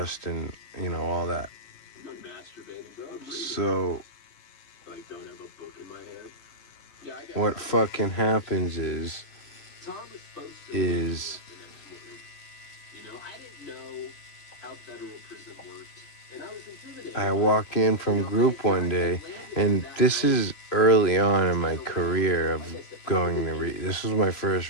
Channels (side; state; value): right; late; 3.0 ms